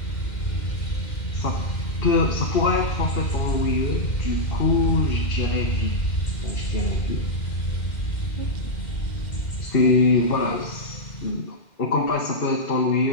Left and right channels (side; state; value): right; late; 2.1 ms